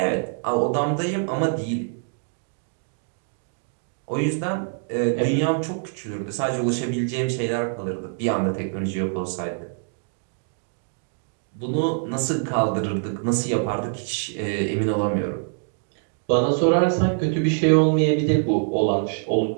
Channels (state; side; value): silent; left; digital silence